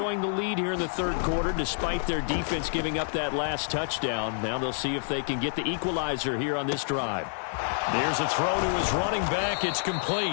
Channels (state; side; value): silent; right; digital silence